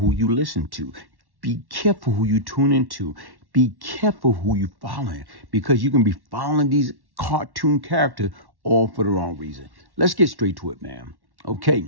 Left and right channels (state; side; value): late; left; 1.1 ms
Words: you listen to. Be careful who you tune into. Be careful who you following, because you can be following these cartoon characters all for the wrong reason. Let's get straight to it, man.